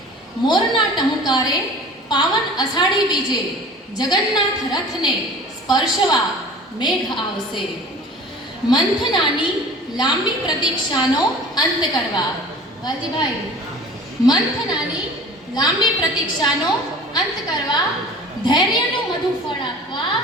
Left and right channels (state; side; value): normal; both; correlation 0.42